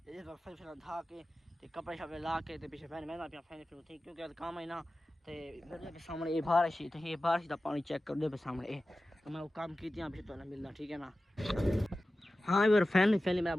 फिर धा के कपड़े शपड़े ला के पीछे फैन मैंने अपना फैन फिर थी क्योंकि काम है ना तो सामने ये बारिश तो ये बारिश का पानी चेक कर दे सामने तो मैं वो काम कीजिए फिर थोड़ा मिल रहा ठीक है ना। हाँ यार फैमिली मेरा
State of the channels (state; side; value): normal; both; correlation 0.95